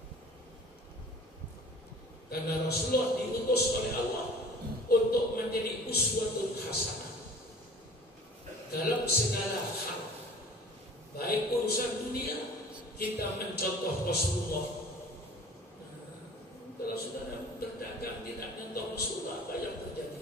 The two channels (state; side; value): normal; both; correlation 0.46